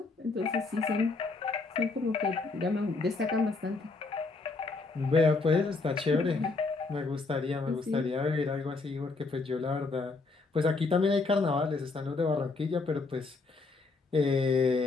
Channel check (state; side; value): quieter; right; 3.9 dB